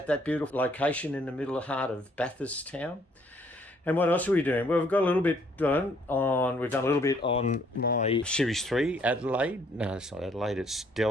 that beautiful location in the middle of the heart of Bathurst town. And what else are we doing? Well, we've got a little bit done on, we've done a little bit on my Series 3 Adelaide. No, it's not Adelaide, it's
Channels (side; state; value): both; normal; correlation 0.65